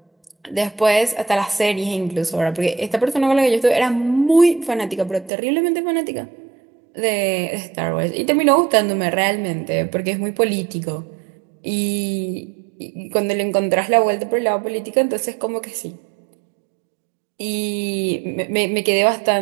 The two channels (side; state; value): left; drops out; at 5.3 s